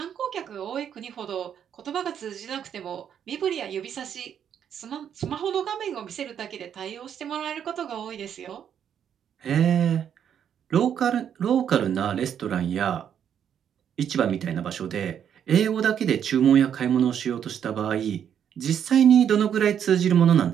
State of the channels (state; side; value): quieter; left; 8.8 dB